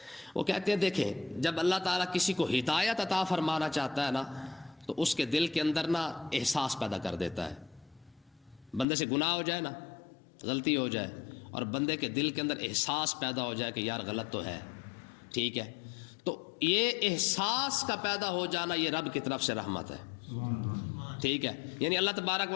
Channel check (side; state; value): right; drops out; at 8.8 s